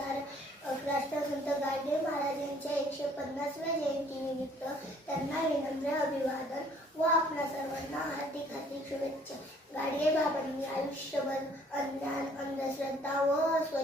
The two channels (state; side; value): normal; both; correlation 0.59